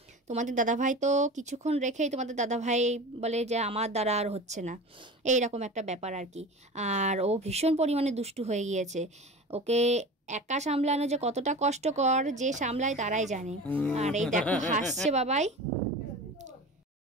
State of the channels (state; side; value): normal; both; correlation 0.34